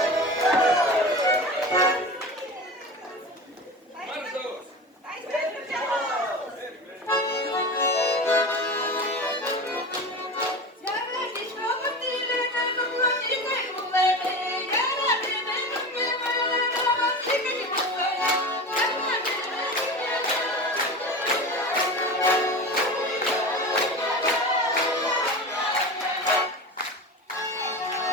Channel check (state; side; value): normal; both; correlation 0.29